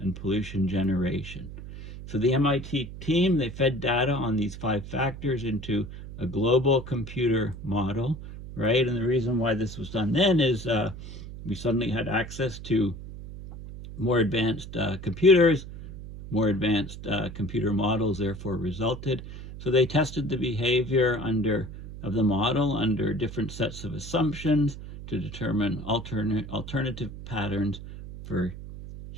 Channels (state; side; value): noise; right; hum, 12 dB below the sound